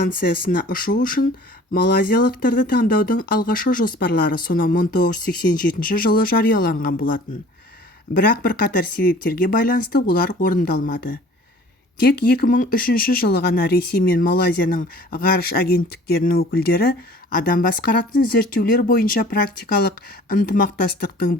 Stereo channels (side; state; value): both; normal; correlation 0.49